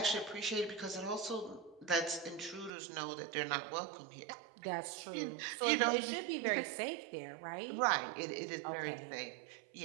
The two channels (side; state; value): left; drops out; at 2.7 s